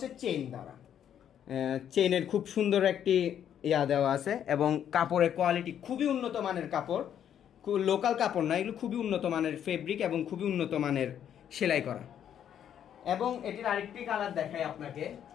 চেইন দ্বারা, চেইনের খুব সুন্দর একটি দেওয়া আছে এবং কাপড়ের কোয়ালিটি খুবই উন্নত মানের কাপড়, লোকাল কাপড় না, এগুলো খুবই উন্নত মানের ফেব্রিক এবং খুবই উন্নত মানের সেলাই করা। এবং এটির আরেকটি কালার দেখাই আপনাকে,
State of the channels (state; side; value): quieter; right; 9.6 dB